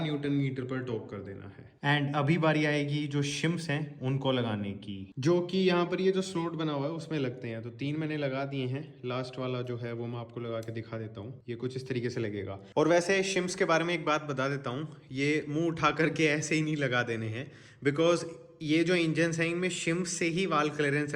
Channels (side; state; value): both; identical; correlation 1.00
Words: न्यूटन मीटर पर टॉर्क कर देना है। एंड अभी बारी आएगी जो शिम्स हैं उनको लगाने की, जो कि यहाँ पर ये जो स्लॉट बना हुआ है उसमें लगते हैं। तो 3 मैंने लगा दिए हैं, लास्ट वाला जो है वो मैं आपको लगा के दिखा देता हूँ। ये कुछ इस तरीके से लगेगा। और वैसे शिम्स के बारे में एक बात बता देता हूँ, ये मुंह उठा करके ऐसे ही नहीं लगा देने हैं, बिकॉज ये जो इंजन्स हैं इनमें शिम्स से ही वाल क्लियरेंस